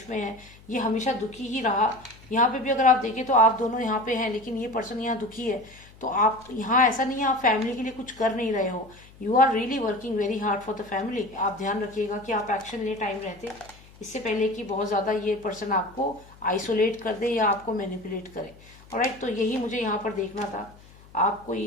में है ये हमेशा दुखी ही रहा। यहाँ पे भी अगर आप देखें तो आप दोनों यहाँ पे हैं, लेकिन ये पर्सन यहाँ दुखी है। तो आप यहाँ, ऐसा नहीं है आप फैमिली के लिए कुछ कर नहीं रहे हो, you are really working very hard for the family. आप ध्यान रखिएगा कि आप एक्शन ले टाइम रहते, इससे पहले कि बहुत ज़्यादा ये पर्सन आपको आइसोलेट कर दे या आपको मैनिपुलेट करे। ऑलराइट, तो यही मुझे यहाँ पर देखना था। आपको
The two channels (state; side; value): noise; left; hum, 23 dB below the sound